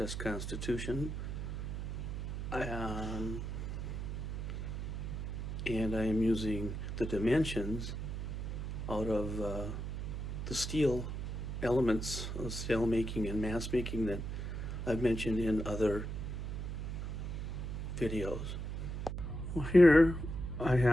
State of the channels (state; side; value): noise; right; hum, 4 dB below the sound